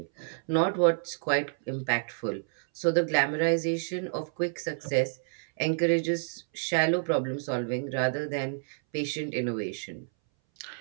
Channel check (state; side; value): silent; left; 59 dB below the other